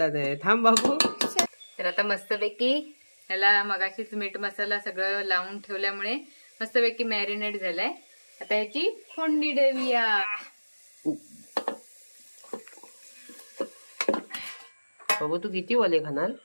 नाही. थांब बाबू. तर आता मस्तपैकी ह्याला मगाशीच मीठ मसाला सगळं लावून ठेवल्यामुळे मस्तपैकी मॅरिनेट झालाय. आता ह्याची फोडणी देऊया. बाबू तू किती वडे खाणार?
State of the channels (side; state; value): both; inverted; correlation -1.00